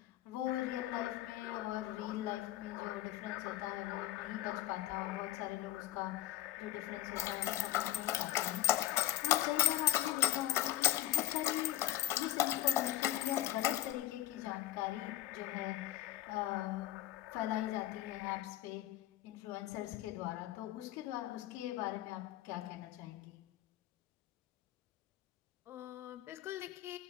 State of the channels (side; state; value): right; quieter; 14.3 dB